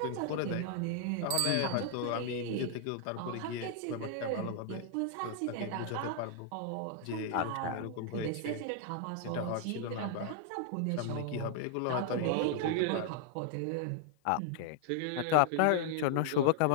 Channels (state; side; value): different; both; correlation 0.00